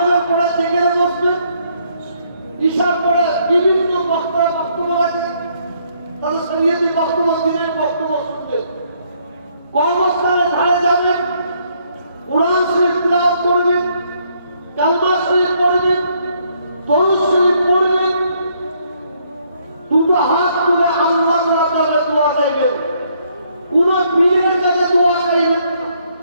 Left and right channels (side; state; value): both; inverted; correlation -0.70